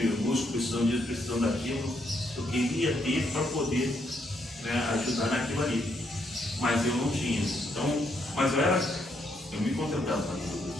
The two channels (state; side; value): normal; both; correlation 0.75